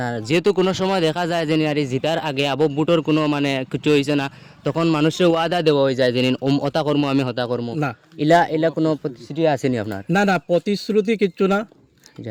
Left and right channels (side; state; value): both; identical; correlation 1.00